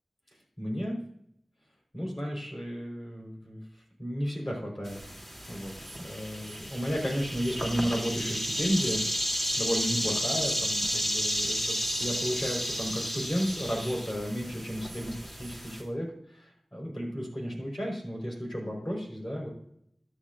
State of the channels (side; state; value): both; normal; correlation 0.96